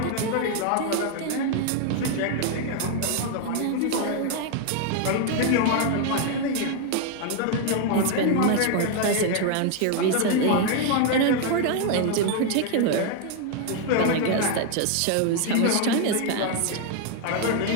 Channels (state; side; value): different; both; correlation 0.01